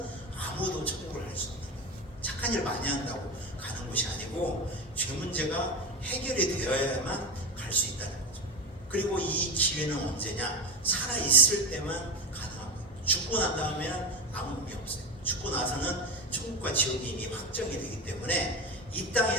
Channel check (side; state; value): both; normal; correlation 0.18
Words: 아무도 천국을 할 수 없는 거예요. 착한 일 많이 한다고 가는 곳이 아니고 죄 문제가 해결이 되어야만 갈 수 있다는 거죠. 그리고 이 기회는 언제냐? 살아있을 때만 가능한 거예요. 죽고 난 다음에는 아무 의미 없어요. 죽고 나서는 천국과 지옥이 이미 확정이 되기 때문에 이 땅에